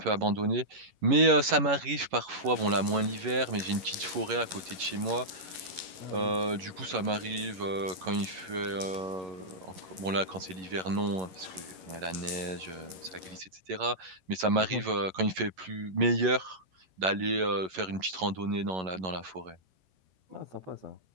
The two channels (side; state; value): left; late; 11 ms